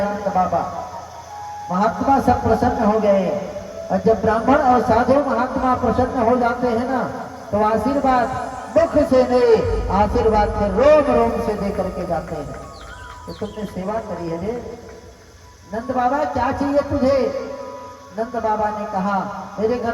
हैं बाबा। महात्मा सब प्रसन्न हो गए और जब ब्राह्मण और साधु महात्मा प्रसन्न हो जाते हैं ना, तो आशीर्वाद मुख से नहीं, आशीर्वाद से रोम रोम से दे करके जाते हैं। तो तुमने सेवा करी है रे नंद बाबा, क्या चाहिए तुझे? नंद बाबा ने कहा मेरे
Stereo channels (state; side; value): identical; both; correlation 1.00